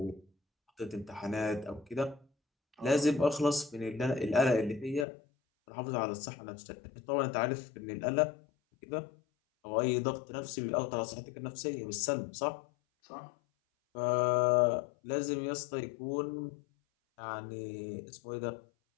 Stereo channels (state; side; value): drops out; right; at 5.1 s